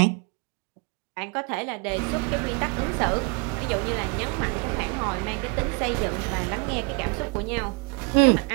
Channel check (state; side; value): quieter; left; 31.4 dB